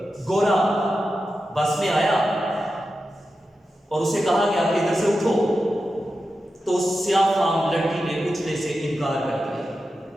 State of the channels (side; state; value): both; normal; correlation 0.91